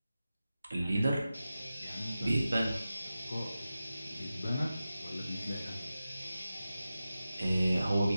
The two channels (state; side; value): inverted; both; correlation -0.93